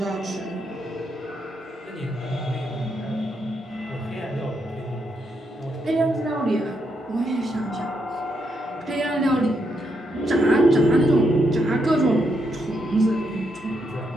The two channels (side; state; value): both; normal; correlation 0.80